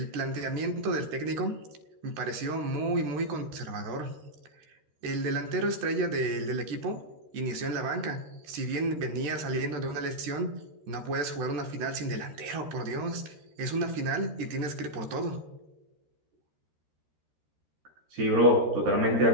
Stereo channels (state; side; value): late; left; 13 ms